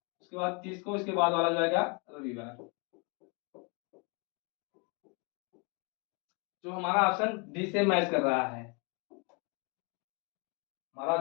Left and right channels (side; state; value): right; quieter; 32.9 dB